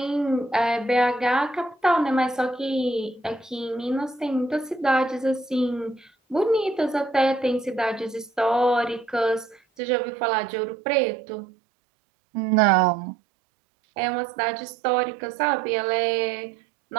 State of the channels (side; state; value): left; drops out; at 9.6 s